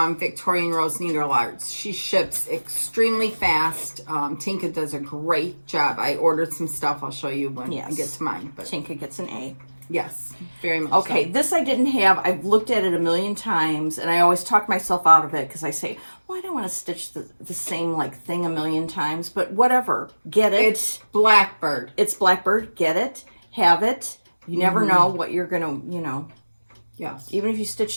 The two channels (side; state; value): both; inverted; correlation -1.00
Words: Victorian Rose Needle Arts, she ships extremely fast. Tinka does a great job. I ordered some stuff. I'll show you when I get to mine. But Tinka gets an A. Yes, very much. Okay, so. This I didn't have. I've looked at it a million times, and I always talk myself out of it because I say, well, I don't want to stitch the same thing a million times, but whatever. Get it. It's Blackbird. It's Blackbird. Get it. Have it. You never know what you're going to, Yes. Even if you